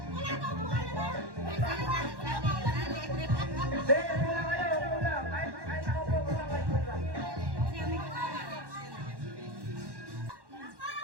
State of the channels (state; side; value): late; left; 1.1 ms